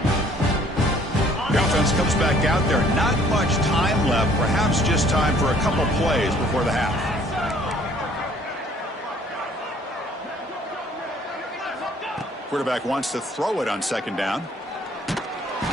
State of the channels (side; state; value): both; normal; correlation 0.58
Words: The offense comes back out there. Not much time left. Perhaps just time for a couple plays before the half. Quarterback wants to throw it on second down. Oh,